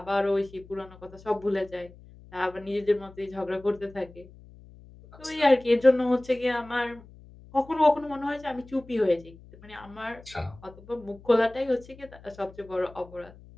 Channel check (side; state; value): left; noise; hum, 21 dB below the sound